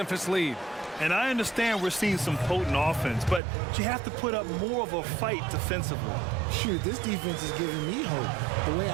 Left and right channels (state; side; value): drops out; left; at 3.4 s